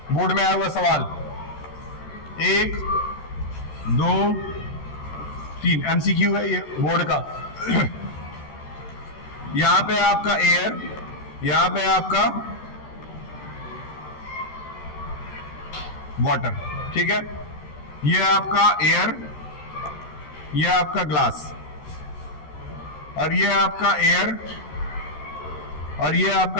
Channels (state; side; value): late; right; 13 ms